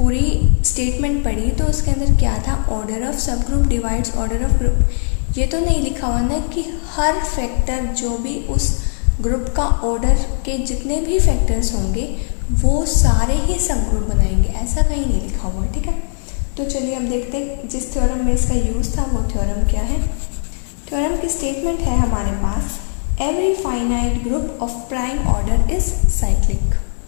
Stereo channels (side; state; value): right; silent; digital silence